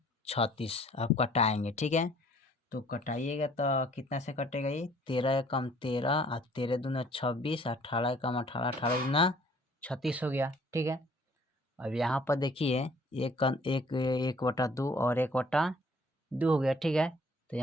अब कटाएंगे, ठीक है। तो कटाइएगा तो कितना से कटेगा, ये 13 एकम 13 और 13 दूना 26, 18 एकम 18, 18 दूना 36 हो गया, ठीक है। अब यहाँ पर देखिए एक 1/2 और 1/2 हो गया, ठीक है। तो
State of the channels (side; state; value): both; normal; correlation 0.57